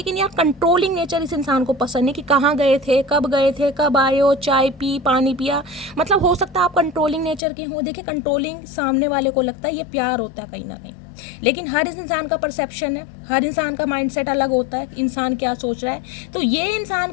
यार कंट्रोलिंग नेचर इस इंसान को पसंद नहीं, कि कहाँ गए थे, कब आए हो, चाय पी, पानी पिया, मतलब हो सकता है आप कंट्रोलिंग नेचर के हों। देखिए कंट्रोलिंग सामने वाले को लगता है ये प्यार होता है कहीं ना कहीं, लेकिन हर इंसान का परसेप्शन है, हर इंसान का माइंडसेट अलग होता है, इंसान क्या सोच रहा है। तो ये इंसान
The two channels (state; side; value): drops out; right; at 7.4 s